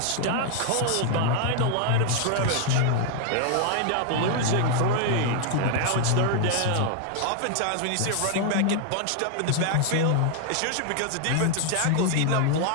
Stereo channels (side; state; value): both; different; correlation 0.00